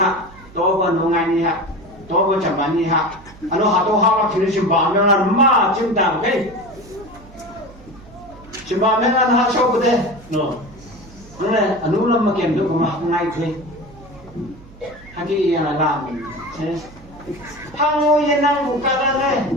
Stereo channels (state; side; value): noise; right; hum, 21 dB below the sound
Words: tôi còn nông ngày này ha tôi còn chậm bán này ha anh nó tôi học thì nó chậm bán nó là mà chậm đào cái chậm bán nó là học sau bữa đây nó này anh nó làm mà kiểm được mà học ngay thôi hay cái là làm thế Hango yenang buka